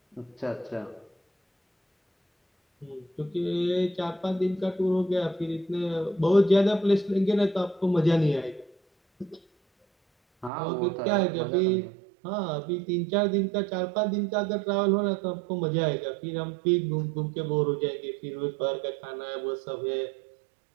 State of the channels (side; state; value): left; drops out; at 10.5 s